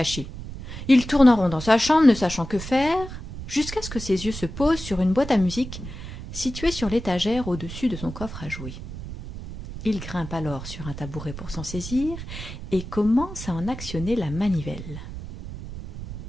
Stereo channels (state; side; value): noise; right; rumble, 10 dB below the sound